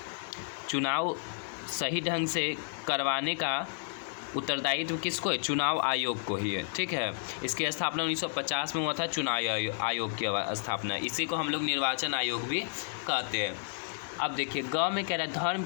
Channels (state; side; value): silent; right; digital silence